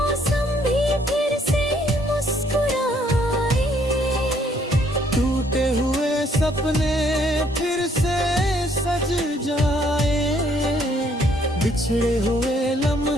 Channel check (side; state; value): both; normal; correlation 0.66